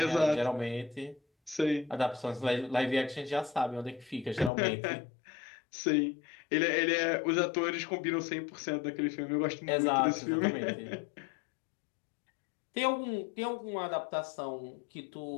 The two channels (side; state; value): right; drops out; at 4.5 s